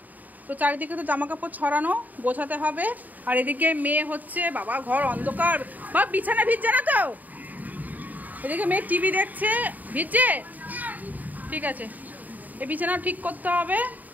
তো চারিদিকে তো জামা কাপড় ছড়ানো, গোছাতে হবে। আর এদিকে মেয়ে হচ্ছে, বাবা ঘর অন্ধকার, বা বিছানা ভিজছে না তো? এদিকে মেয়ে টিভি দেখছে, ভিজছে, ঠিক আছে, এই বিছানাও ঠিক করতে হবে।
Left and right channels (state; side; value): late; left; 0.081 ms